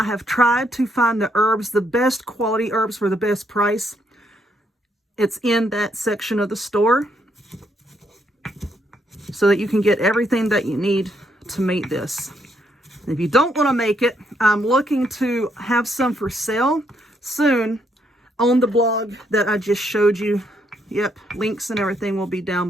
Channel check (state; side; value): normal; both; correlation 0.74